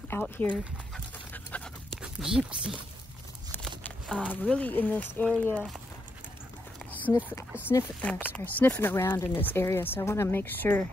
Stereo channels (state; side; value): normal; both; correlation 0.81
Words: out here. Gypsy. Really in this area, sniffing around in this area. So I want to make sure.